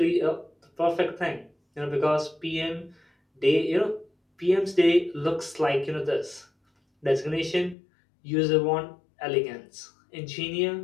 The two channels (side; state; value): right; drops out; at 7.8 s